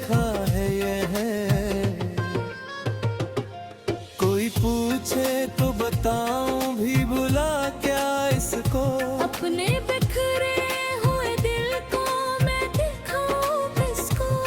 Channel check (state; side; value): identical; both; correlation 1.00